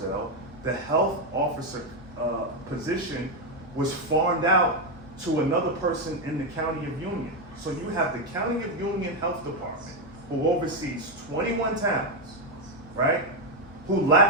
The health officer position was farmed out to another person in the County of Union. So you have the County of Union Health Department who oversees 21 towns, right? who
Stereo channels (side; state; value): both; normal; correlation 0.05